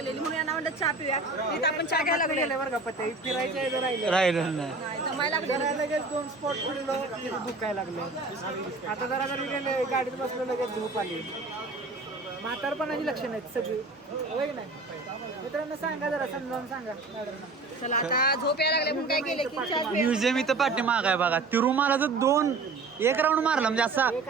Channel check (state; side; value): quieter; left; 3.7 dB